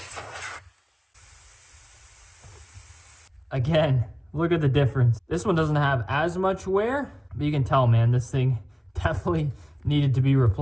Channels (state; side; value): identical; both; correlation 1.00